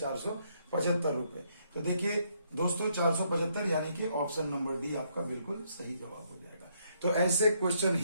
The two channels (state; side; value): inverted; both; correlation -0.72